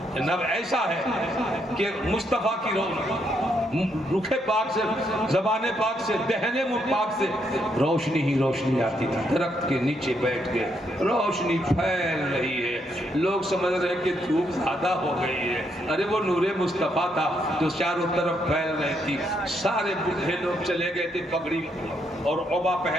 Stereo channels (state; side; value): normal; both; correlation 0.76